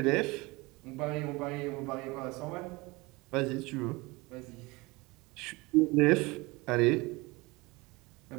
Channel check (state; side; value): quieter; left; 23.7 dB